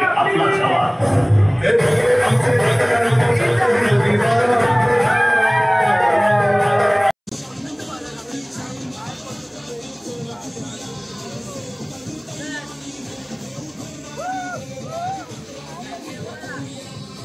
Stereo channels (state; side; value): identical; both; correlation 1.00